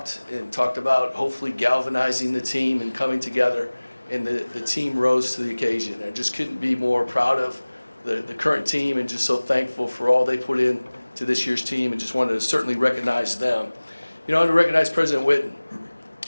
about hopefully galvanizing the team and coming together, and the team rose to the occasion. I just couldn't be more proud of the current team and just so thankful for all they put in to this year's team, and just wanted to certainly recognize them. You know, I want to recognize President Witten.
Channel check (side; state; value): both; inverted; correlation -1.00